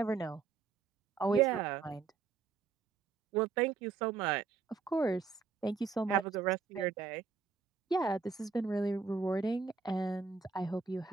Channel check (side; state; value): left; quieter; 5.1 dB